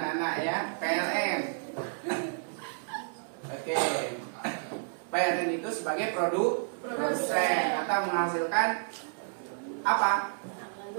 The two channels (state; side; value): silent; left; 57 dB below the other